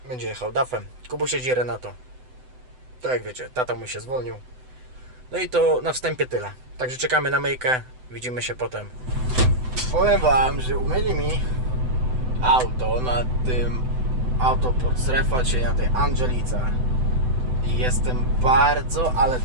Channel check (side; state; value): left; late; 7.9 ms